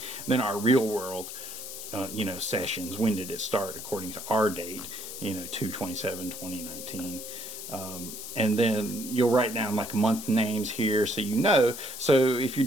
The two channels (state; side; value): noise; left; hiss, 9 dB below the sound